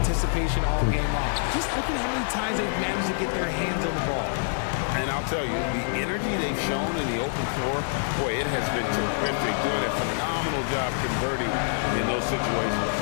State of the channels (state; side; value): silent; right; digital silence